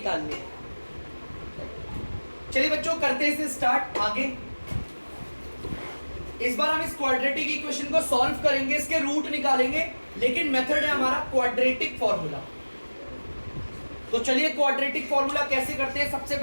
है। चलिए बच्चों, करते हैं इसे स्टार्ट आगे। इस बार हम इस क्वाड्रेटिक इक्वेशन को सॉल्व करेंगे, इसके रूट निकालेंगे, लेकिन मेथड है हमारा क्वाड्रेटिक फॉर्मूला। तो चलिए क्वाड्रेटिक फॉर्मूला कैसे करते हैं, सबसे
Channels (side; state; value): both; inverted; correlation -1.00